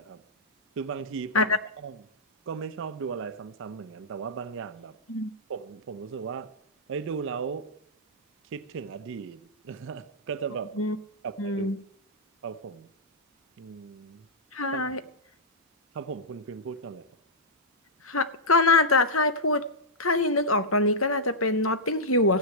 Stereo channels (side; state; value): both; normal; correlation -0.10